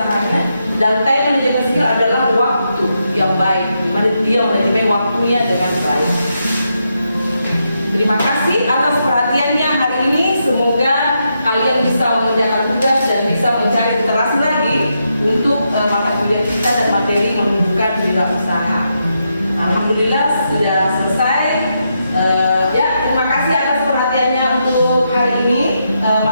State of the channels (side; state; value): both; inverted; correlation -0.83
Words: Dan time management skill adalah waktu yang baik, bagaimana dia manajemen waktunya dengan baik. Terima kasih atas perhatiannya hari ini. Semoga kalian bisa mengerjakan tugas dan bisa mencari literasi lagi untuk mata kuliah kita dan materi menunjukkan wirausaha. Alhamdulillah sudah selesai. Ya, terima kasih atas perhatiannya untuk hari ini